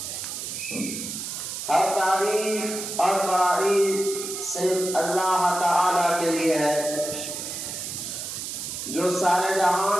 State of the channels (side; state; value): right; noise; hiss, 6 dB below the sound